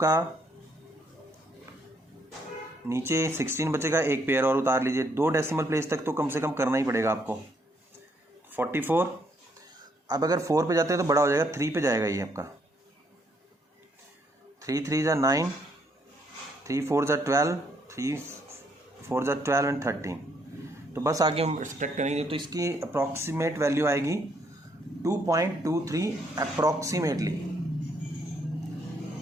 नीचे 16 बचेगा, एक पेयर और उतार लीजिए। 2 डेसिमल प्लेस तक तो कम से कम करना ही पड़ेगा आपको। 44। अब अगर 4 पे जाते हैं तो बड़ा हो जाएगा, 3 पे जाएगा ये आपका। 3 3 ज़ा 9, 3 4 ज़ा 12, 3 4 ज़ा 12 एंड 13। तो बस आगे हम सब्ट्रैक्ट करेंगे तो इसकी अप्रॉक्सीमेट वैल्यू आएगी 2.23 अप्रॉक्सीमेटली,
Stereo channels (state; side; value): normal; both; correlation 0.72